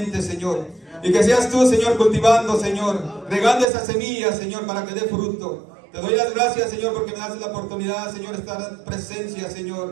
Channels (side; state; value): left; drops out; at 3.7 s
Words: Señor. Y que seas tú, Señor, cultivando, Señor, regando esa semilla, Señor, para que dé fruto. Te doy las gracias, Señor, porque me das la oportunidad, Señor, de estar en presencia,